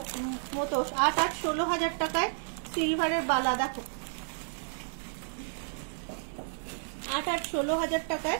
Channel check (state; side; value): silent; left; digital silence